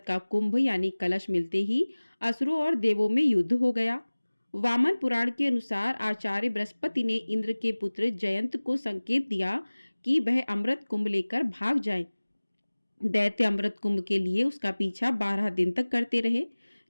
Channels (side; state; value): both; inverted; correlation -1.00